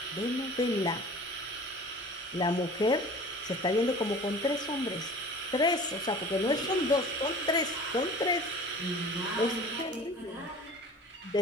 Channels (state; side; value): normal; both; correlation 0.42